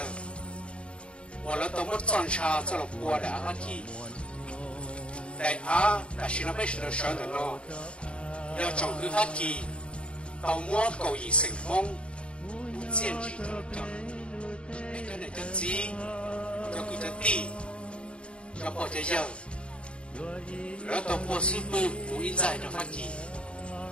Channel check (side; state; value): right; late; 0.057 ms